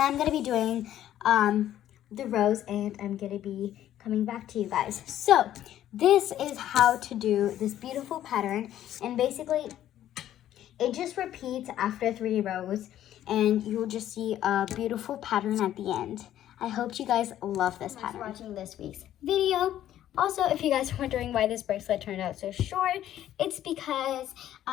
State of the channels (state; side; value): quieter; right; 12.0 dB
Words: I'm gonna be doing the rows, and I'm gonna be coming back to you guys. So this is how to do this beautiful pattern, and basically it just repeats after 3 rows, and you'll just see a beautiful pattern at the end. I hope you guys love this pattern. Thanks for watching this week's video. Also, if you guys are wondering why this bracelet turned out so short, it's because